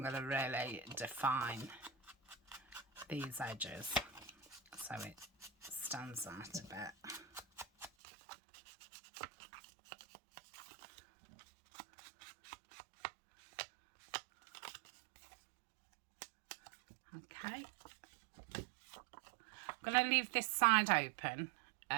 going to really define these edges so it stands out a bit. Okay, I'm going to leave this side open.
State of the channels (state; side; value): drops out; left; at 7.9 s